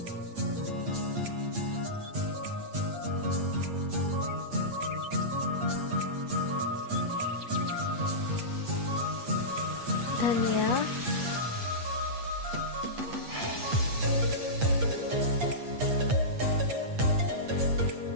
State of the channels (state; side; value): late; left; 8.5 ms